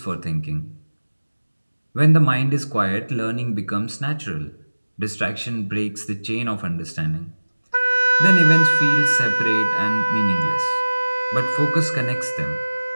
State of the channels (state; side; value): inverted; both; correlation -1.00